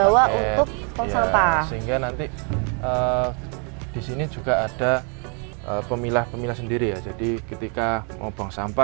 untuk tong sampah. Sehingga nanti di sini juga ada pemilah sendiri ya. Jadi ketika mau buang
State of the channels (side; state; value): left; quieter; 37.7 dB